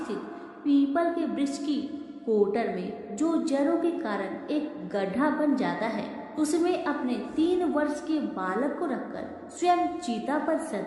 पीपल के वृक्ष की कोटर में जो जड़ों के कारण एक गड्ढा बन जाता है उसमें अपने 3 वर्ष के बालक को रखकर स्वयं चीता पर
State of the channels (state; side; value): identical; both; correlation 1.00